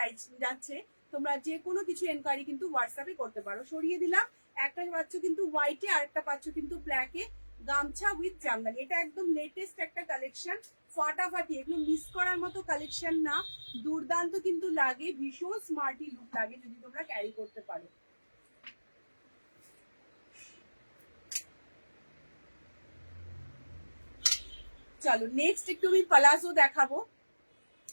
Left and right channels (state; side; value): inverted; both; correlation -1.00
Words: যাচ্ছে, তোমরা যে কোনো কিছু এনকোয়ারি কিন্তু হোয়াটসঅ্যাপে করতে পারো। সরিয়ে দিলাম, একটা পাচ্ছ কিন্তু হোয়াইটে আর একটা পাচ্ছ কিন্তু ব্ল্যাকে, গামছা উইথ জামদানি। এটা একদম লেটেস্ট একটা কালেকশন, ফাটাফাটি, এগুলো মিস করার মতো কালেকশন না, দুর্দান্ত কিন্তু লাগে, ভীষণ স্মার্টি লুক লাগে যদি তোমরা ক্যারি করতে পারো। চলো নেক্সট একটু আমি পালাজো দেখাবো।